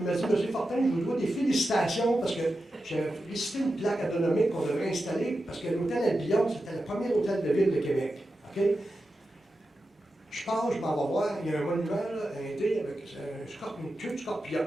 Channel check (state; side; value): normal; both; correlation 0.91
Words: M. Fortin, je vous dois des félicitations parce que j'ai félicité une plaque atomique qu'on devrait installer parce que l'hôtel Albion, c'était le premier hôtel de ville de Québec. Okay? Je pars, je m'en vais voir, il y a un monument, là, un thé avec une queue de scorpion.